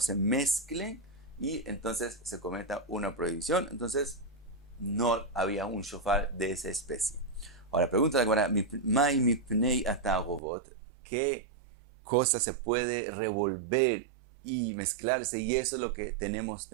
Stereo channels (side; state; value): left; drops out; at 10.4 s